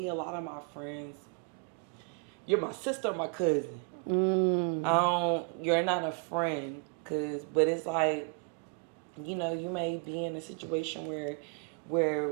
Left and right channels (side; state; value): left; quieter; 34.1 dB